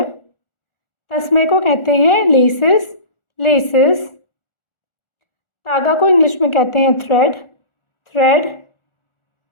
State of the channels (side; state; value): right; late; 1.4 ms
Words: तस्मे को कहते हैं लेसेस। लेसेस। तागा को इंग्लिश में कहते हैं थ्रेड। थ्रेड।